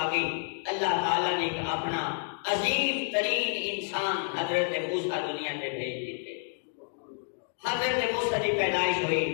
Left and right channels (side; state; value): right; silent; 58 dB below the other